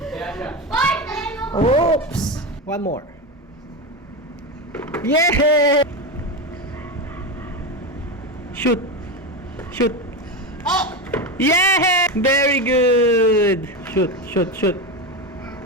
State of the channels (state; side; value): normal; both; correlation 0.17